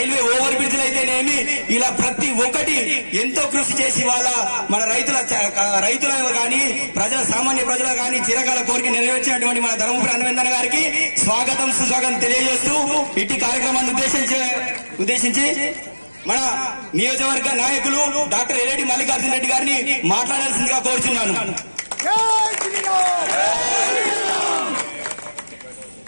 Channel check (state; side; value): inverted; both; correlation -1.00